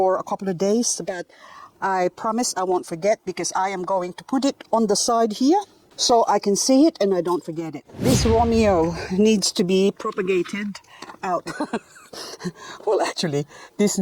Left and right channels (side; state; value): both; identical; correlation 1.00